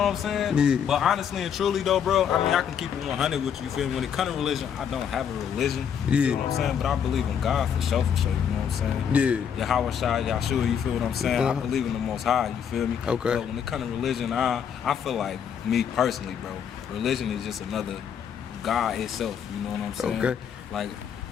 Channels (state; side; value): quieter; right; 8.0 dB